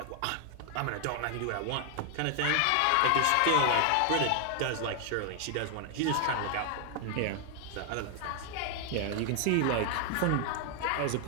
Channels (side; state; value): both; different; correlation 0.00